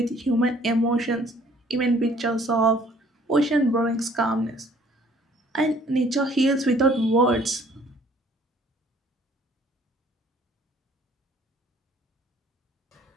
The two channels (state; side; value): normal; both; correlation 0.58